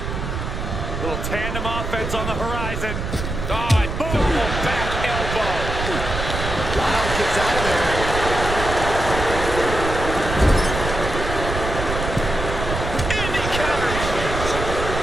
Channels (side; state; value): right; noise; rumble, 5 dB below the sound